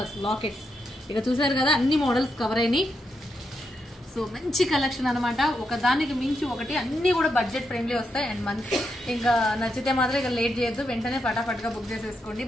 lockets. ఇక చూసారు కదా అన్ని models cover అయినాయి. So మంచి collection అన్నమాట. ఒకదానికి మించి ఒకటి అన్ని కూడా బడ్జెట్ ఫ్రెండ్లీ వస్తాయి అండ్ మంచి ఇంకా నచ్చితే మాత్రం ఇక లేట్ చేయొద్దు, వెంటనే ఫటాఫట్గా బుక్ చేసేసుకోండి.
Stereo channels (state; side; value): normal; both; correlation 0.83